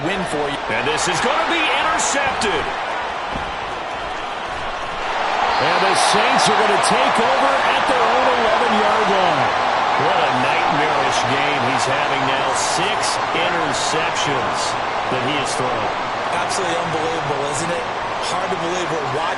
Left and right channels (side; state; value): both; identical; correlation 1.00